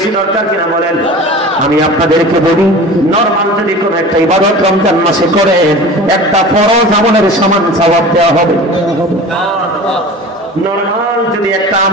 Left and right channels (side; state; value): both; normal; correlation 0.37